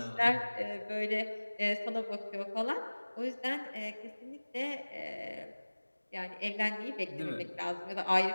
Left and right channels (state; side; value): inverted; both; correlation -1.00